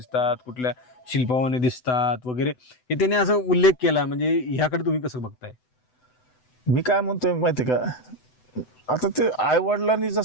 कुठल्या शिल्पावाने दिसतात वगैरे, हे त्यांनी असं उल्लेख केला. म्हणजे ह्याकडे तुम्ही कसं बघताय? मी काय म्हणतोय माहिती का, आता ते आई वडिलांनी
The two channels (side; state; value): right; late; 7.9 ms